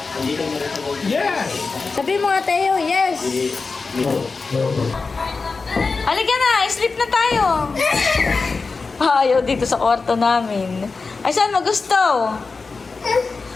Yes. Sabi mo nga, Tayo, yes! Halika na, sleep na tayo! Ayaw dito sa kwarto namin. Ay, saan mo gusto?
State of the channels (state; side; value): quieter; right; 4.3 dB